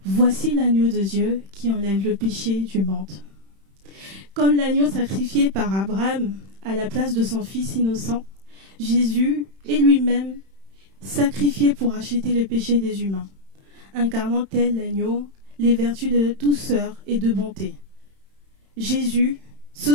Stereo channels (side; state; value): left; late; 31 ms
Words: Voici l'agneau de Dieu qui enlève le péché du monde. » Comme l'agneau sacrifié par Abraham à la place de son fils innocent, Jésus est lui-même sacrifié pour acheter les péchés des humains, incarnant tel l'agneau les vertus de douceur et de bonté. Jésus se